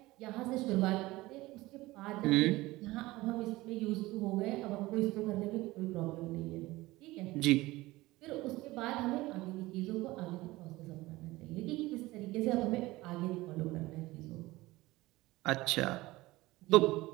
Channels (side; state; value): left; quieter; 19.3 dB